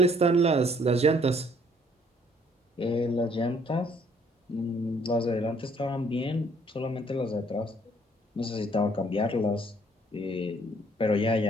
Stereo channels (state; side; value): normal; both; correlation 0.63